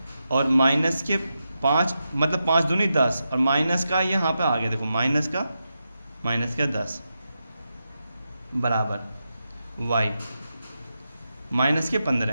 और माइनस के 5 मतलब 5 दूनी 10, और माइनस का ये यहाँ पे आ गया, देखो माइनस का 10 बराबर y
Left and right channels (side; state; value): both; inverted; correlation -0.88